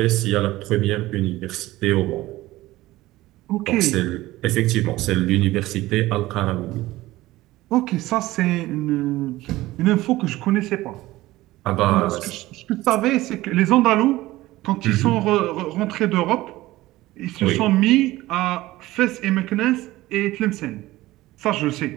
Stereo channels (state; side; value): quieter; left; 17.5 dB